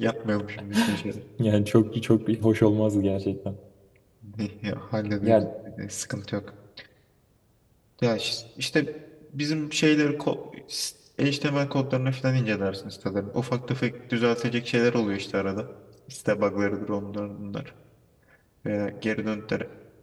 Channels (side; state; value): both; identical; correlation 1.00